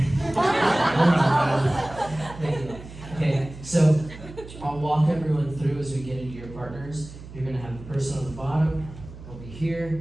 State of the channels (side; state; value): right; noise; hum, 15 dB below the sound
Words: Okay, so I'll walk everyone through as we get into your partners. You're going to have the person on the bottom over